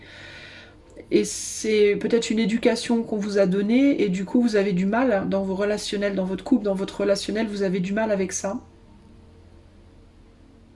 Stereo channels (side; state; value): both; identical; correlation 1.00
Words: Et c'est peut-être une éducation qu'on vous a donnée et du coup vous avez du mal dans vos relationnels, dans votre couple, dans votre relationnel, vous avez du mal avec ça.